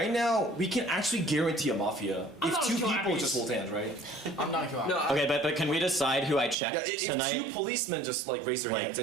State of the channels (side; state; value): left; drops out; at 6.6 s